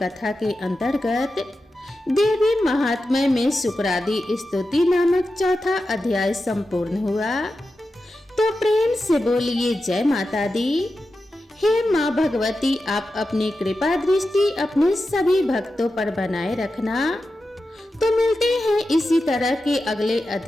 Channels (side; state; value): both; normal; correlation 0.91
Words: के अंतर्गत देवी महात्म्य में शुक्रादि स्तुति नामक चौथा अध्याय संपूर्ण हुआ। तो प्रेम से बोलिए जय माता दी। हे माँ भगवती, आप अपनी कृपा दृष्टि अपने सभी भक्तों पर बनाए रखना। तो मिलते हैं इसी तरह के अगले